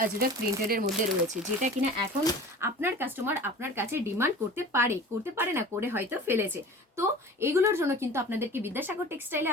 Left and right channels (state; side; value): normal; both; correlation 0.40